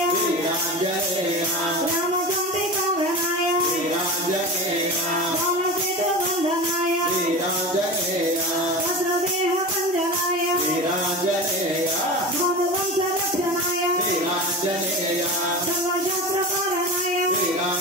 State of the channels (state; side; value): normal; both; correlation 0.28